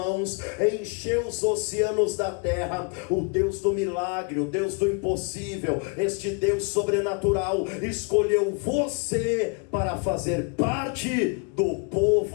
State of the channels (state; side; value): quieter; right; 34.5 dB